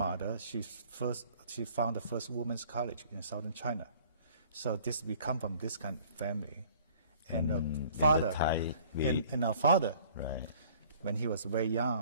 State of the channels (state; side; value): inverted; both; correlation -0.53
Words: she found the first women's college in southern China. So we come from this kind of family. And father, and our father, right, when he was very